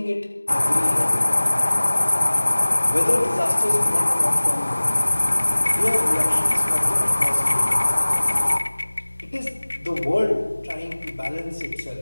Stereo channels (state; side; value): inverted; both; correlation -1.00